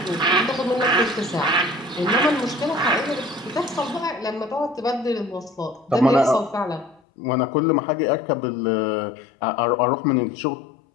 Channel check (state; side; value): drops out; right; at 7.0 s